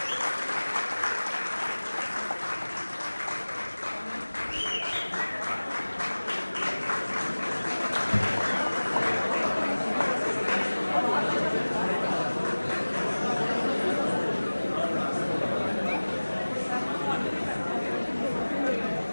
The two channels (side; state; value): both; inverted; correlation -1.00